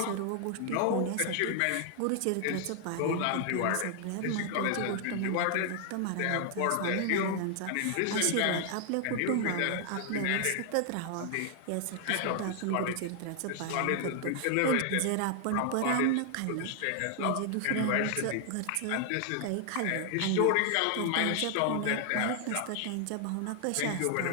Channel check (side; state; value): both; different; correlation 0.00